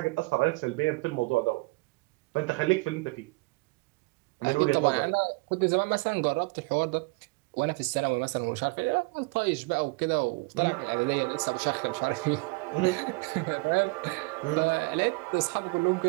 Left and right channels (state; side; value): quieter; left; 27.1 dB